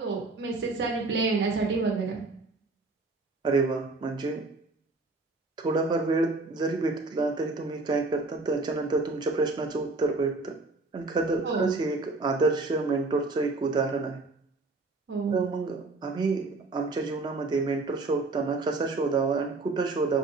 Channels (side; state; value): left; quieter; 3.4 dB